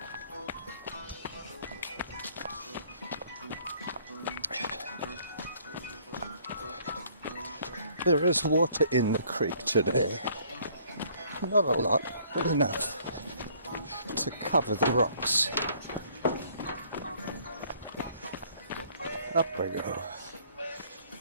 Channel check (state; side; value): inverted; both; correlation -0.60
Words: There is water in the creek today. Not a lot, but enough to cover the rocks. Up I go.